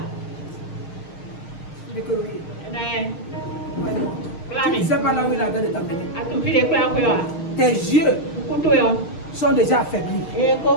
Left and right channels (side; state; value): right; late; 6.5 ms